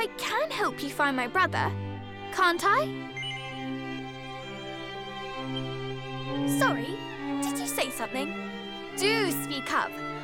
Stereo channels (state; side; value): identical; both; correlation 1.00